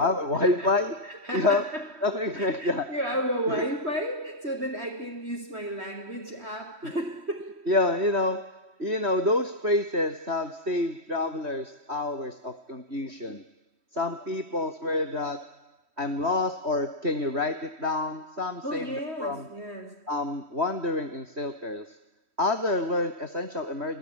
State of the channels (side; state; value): left; late; 3.1 ms